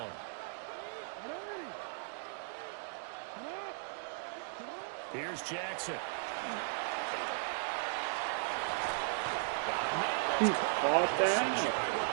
Here's Jackson. He caught that.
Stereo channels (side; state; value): left; silent; digital silence